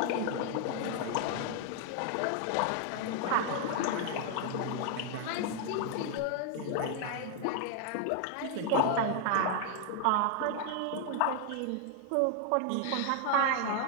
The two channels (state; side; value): different; both; correlation 0.00